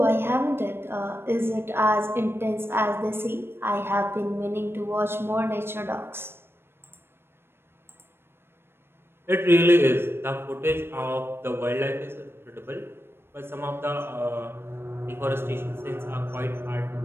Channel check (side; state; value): left; late; 0.11 ms